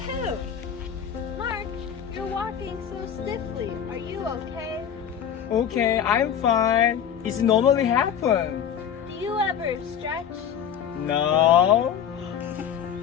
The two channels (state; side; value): quieter; right; 8.7 dB